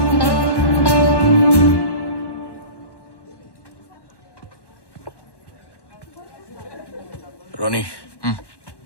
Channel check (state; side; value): late; right; 1.1 ms